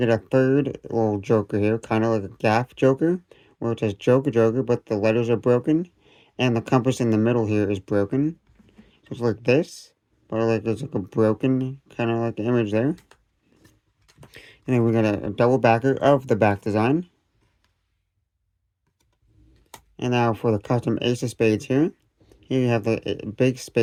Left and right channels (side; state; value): both; identical; correlation 1.00